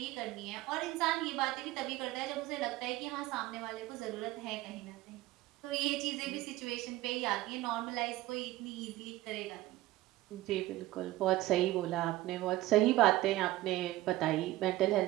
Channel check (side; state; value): left; quieter; 17.1 dB